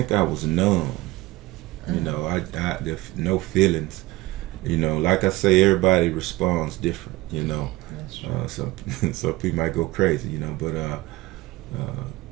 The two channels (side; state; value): left; quieter; 19.1 dB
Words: I was numb. You know, I there's no feelings. You know, like I say, everybody responds different. You know, some people might go crazy. You know, but